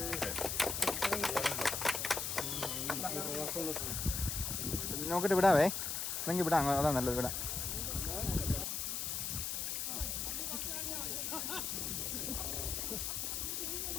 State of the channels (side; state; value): left; noise; hiss, 1 dB below the sound